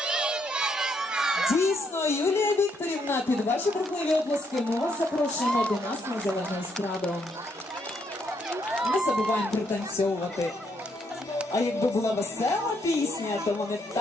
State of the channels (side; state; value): both; normal; correlation 0.74